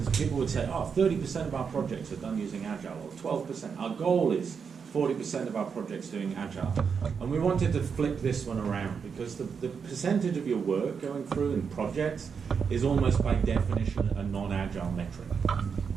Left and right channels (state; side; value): quieter; left; 6.2 dB